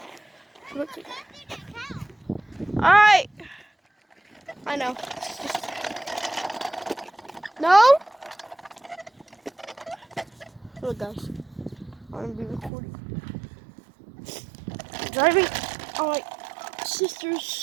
Alright. I know. No? Look, guys. I'm going to be recording. Driving on my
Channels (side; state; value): left; drops out; at 12.7 s